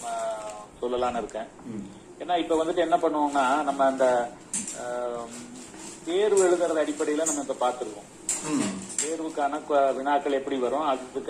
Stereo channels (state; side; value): identical; both; correlation 1.00